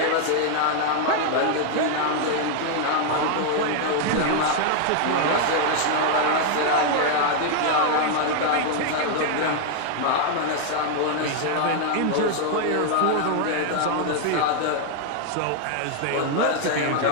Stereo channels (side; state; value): both; different; correlation 0.00